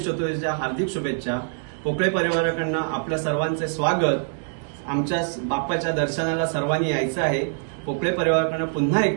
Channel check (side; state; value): left; silent; digital silence